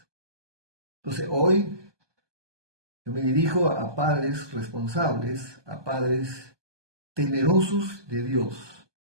Entonces, hoy yo me dirijo a padres responsables, a padres temerosos de Dios.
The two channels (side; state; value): left; late; 1.2 ms